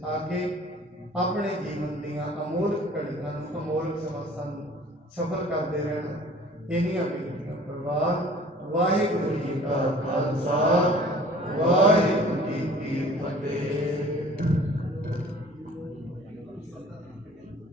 ਆ ਕੇ ਆਪਣੇ ਜੀਵਨ ਦੀਆਂ ਅਮੋਲਕ ਘੜੀਆਂ ਨੂੰ, ਅਮੋਲਕ ਸਮਾਸਾਂ ਨੂੰ ਸਫਲ ਕਰਦੇ ਰਹਿਣਾ। ਇੰਨੀਆਂ ਬੇਨਤੀਆਂ ਪ੍ਰਵਾਹ। ਵਾਹਿਗੁਰੂ ਜੀ ਕਾ ਖਾਲਸਾ, ਵਾਹਿਗੁਰੂ ਜੀ ਕੀ ਫਤਿਹ।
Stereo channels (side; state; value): both; normal; correlation 0.50